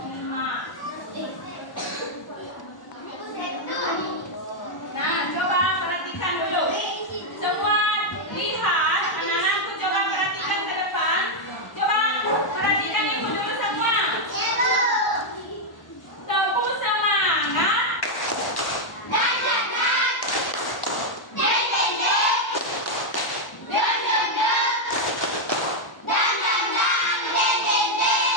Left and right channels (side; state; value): right; late; 1.0 ms